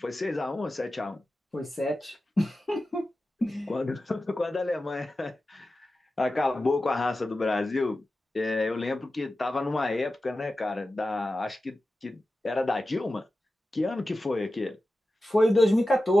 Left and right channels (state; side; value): normal; both; correlation 0.93